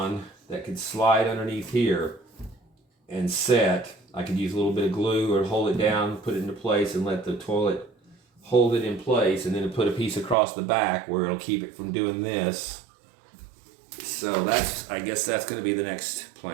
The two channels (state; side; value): drops out; left; at 10.4 s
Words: that could slide underneath here and set. I could use a little bit of glue or hold it down, put it into place, and let the toilet hold it in place, and then put a piece across the back where it'll keep it from doing this. So I guess that's going to be the next